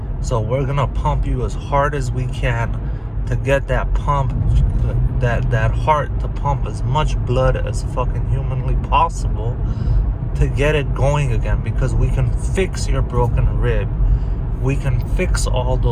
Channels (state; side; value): identical; both; correlation 1.00